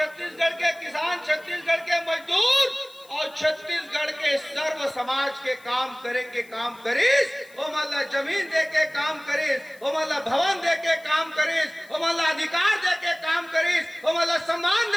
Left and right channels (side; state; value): left; noise; hiss, 26 dB below the sound